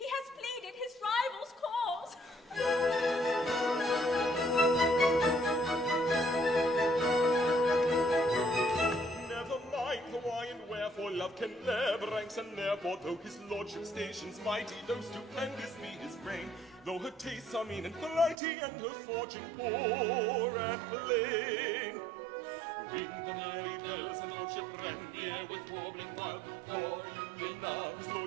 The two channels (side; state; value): left; drops out; at 18.4 s